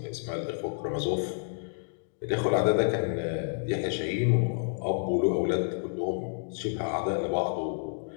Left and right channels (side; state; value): right; silent; digital silence